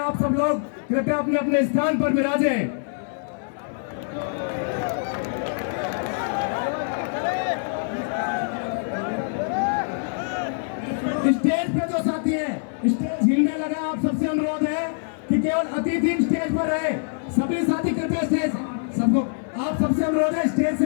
सब लोग कृपया अपने अपने स्थान पर विराजें। स्टेज पे जो साथी हैं, स्टेज हिलने लगा। आप सबसे अनुरोध है कि केवल अतिथि स्टेज पर रहे। सभी साथी कृपया स्टेज सबको, आप सबसे अनुरोध है स्टेज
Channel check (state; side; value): silent; right; 57 dB below the other